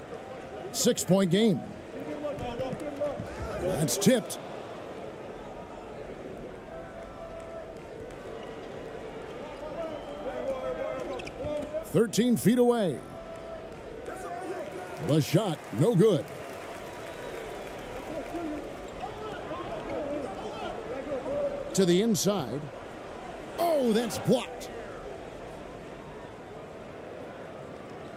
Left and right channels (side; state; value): both; identical; correlation 1.00